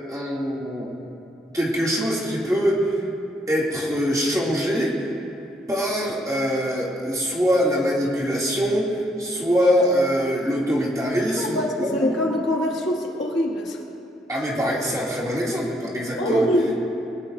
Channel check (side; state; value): both; normal; correlation 0.71